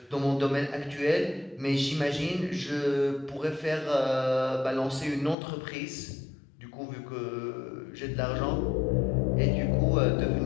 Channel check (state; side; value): drops out; right; at 5.4 s